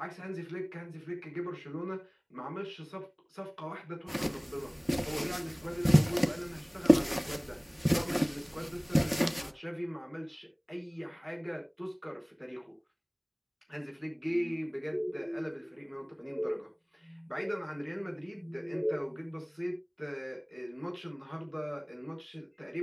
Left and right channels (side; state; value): both; identical; correlation 1.00